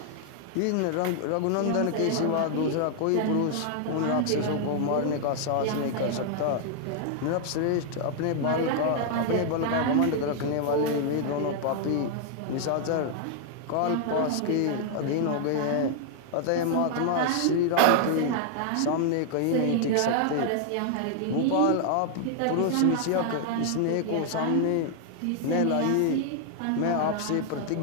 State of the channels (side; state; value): both; different; correlation -0.01